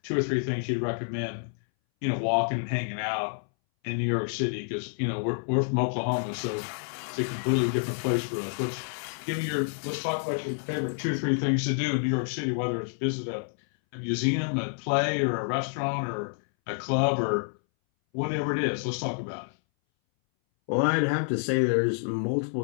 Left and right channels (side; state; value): right; silent; 59 dB below the other